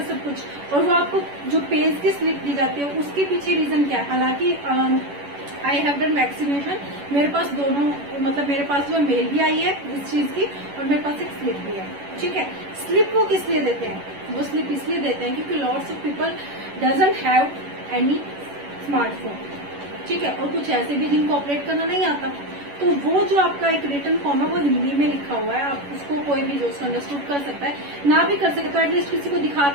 सब कुछ। और वो आपको जो पेज की स्लिप दी जाती है उसके पीछे रीजन क्या है, हालांकि आई हैव डन वैक्सीनेशन, मेरे पास दोनों, मतलब मेरे पास जो मेल भी आई है इस चीज की और मेरे पास एक स्लिप भी है, ठीक है। स्लिप वो किस लिए देते हैं, वो स्लिप इसलिए देते हैं क्योंकि lots of people doesn't have any smartphone, ठीक है, और कुछ ऐसे भी जिनको ऑपरेट करना नहीं आता, तो वो जो आपका एक रिटर्न फॉर्म है वो हिंदी में लिखा हुआ है, आप उसको कोई भी जो उसको अंडरस्टूड कर सकता है, ना भी कर सकता तो एटलीस्ट किसी को दिखा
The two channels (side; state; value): left; late; 11 ms